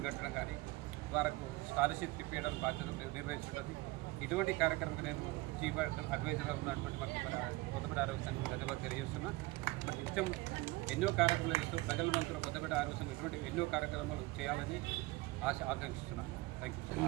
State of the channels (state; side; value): quieter; left; 21.3 dB